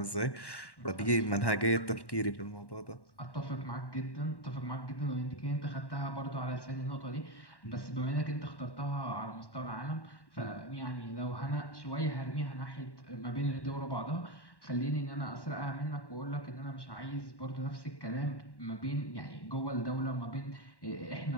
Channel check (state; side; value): late; right; 1.1 ms